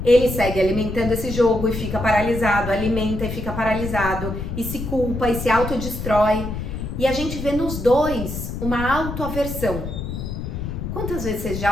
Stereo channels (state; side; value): noise; left; rumble, 6 dB below the sound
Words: Ele segue alimentando esse jogo e fica paralisado, alimenta e fica paralisado, e se culpa e se autodestrói. E a gente vê nos dois uma autoaversão. Quantas vezes você